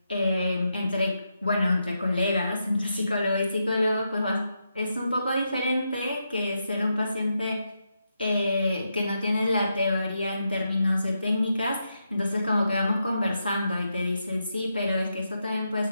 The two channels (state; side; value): inverted; both; correlation -0.84